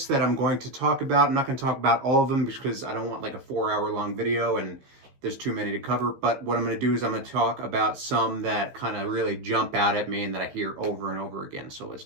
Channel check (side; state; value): left; late; 15 ms